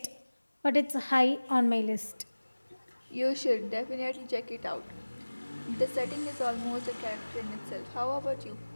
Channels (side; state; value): both; inverted; correlation -1.00